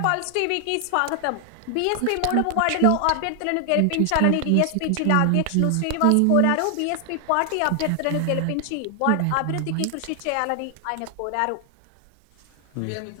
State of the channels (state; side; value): different; both; correlation 0.00